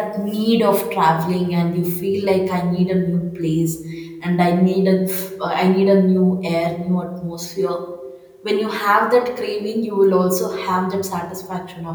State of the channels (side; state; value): both; identical; correlation 1.00